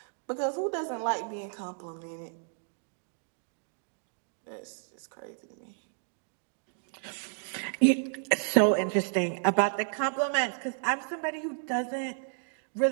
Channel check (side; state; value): left; silent; digital silence